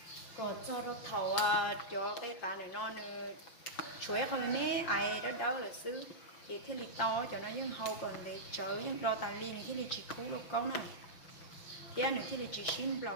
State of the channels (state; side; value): late; right; 5.7 ms